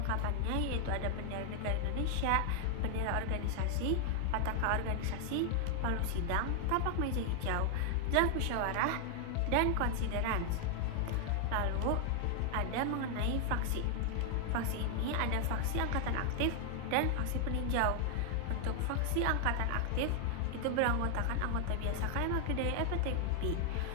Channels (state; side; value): different; both; correlation 0.00